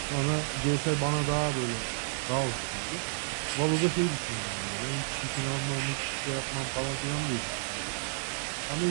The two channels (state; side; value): silent; left; 57 dB below the other